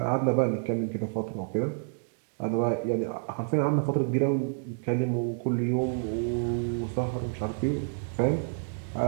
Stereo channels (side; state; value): left; silent; digital silence